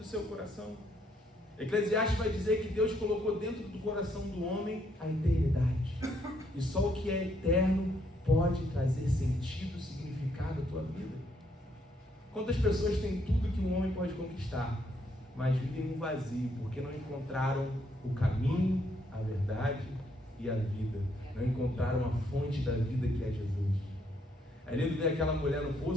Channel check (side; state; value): both; normal; correlation 0.72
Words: seu coração. Eclesiastes vai dizer que Deus colocou dentro do coração do homem a eternidade. E só o que é eterno pode trazer sentido, significado à tua vida. Quantas pessoas têm tudo que um homem pode conquistar, mas vivem um vazio, porque não encontraram o caminho, a verdade e a vida. Não encontraram a fonte da vida que é Jesus. É lindo ver aquela mulher no